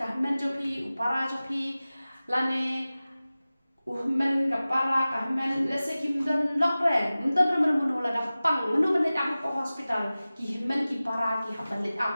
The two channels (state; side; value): inverted; both; correlation -0.97